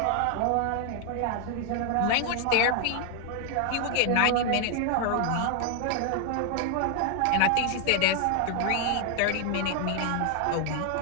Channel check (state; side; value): different; both; correlation 0.00